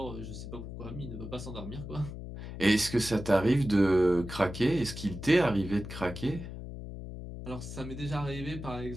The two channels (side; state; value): left; noise; hum, 9 dB below the sound